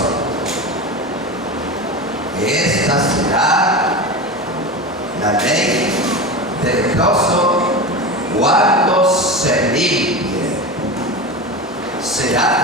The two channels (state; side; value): normal; both; correlation 0.25